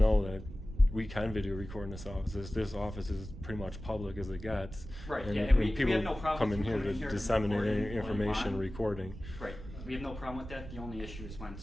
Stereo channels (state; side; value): noise; right; rumble, 12 dB below the sound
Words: that we can video record in this office. This office is pretty much public as it gets. Right, and, yeah, and we people have no problem come in here to and disseminate recording information, recording. Right, we have no problem with that. The only issue is when